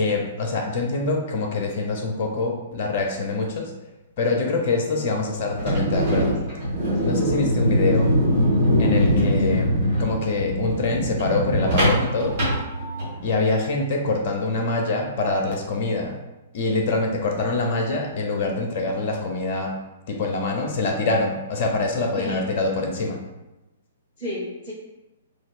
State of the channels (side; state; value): both; inverted; correlation -0.46